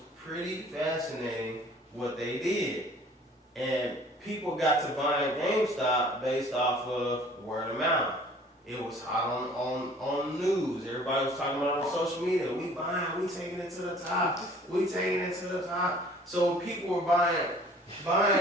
pretty fascinating what they did. And people got to buying GameStop based off of word of mouth. It was hot on news. Everybody was talking about it on social media. We buying, we taking it to the top. We taking it to the top. So people were buying it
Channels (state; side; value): normal; both; correlation 0.52